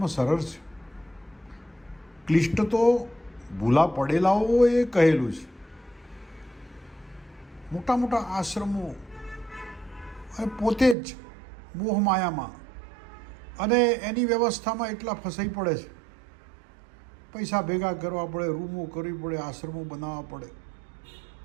સરળ છે. ક્લિષ્ટ તો ભૂલા પડેલાઓએ કહેલું છે. મોટા મોટા આશ્રમો અને પોતે જ મોહમાયામાં અને એની વ્યવસ્થામાં એટલા ફસાઈ પડે છે. પૈસા ભેગા કરવા પડે, રૂમો કરવી પડે, આશ્રમો બનાવવા પડે.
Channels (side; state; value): left; drops out; at 11.0 s